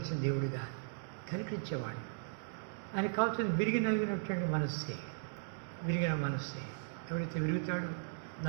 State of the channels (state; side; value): silent; left; digital silence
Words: దేవుడిగా కనిపించేవాడు. ఆయనకు కావాల్సింది విరిగి నలిగినటువంటి మనస్సే, విరిగిన మనస్సే. ఎవరైతే విరుగుతాడు,